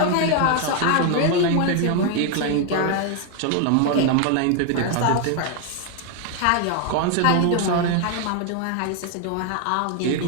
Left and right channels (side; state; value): both; different; correlation 0.01